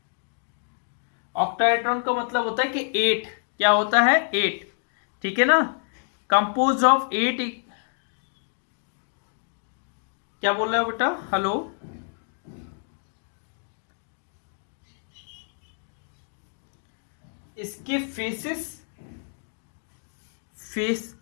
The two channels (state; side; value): silent; right; 60 dB below the other